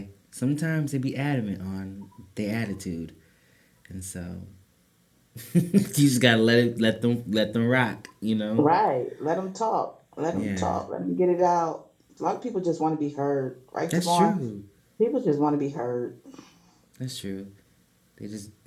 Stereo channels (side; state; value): both; identical; correlation 1.00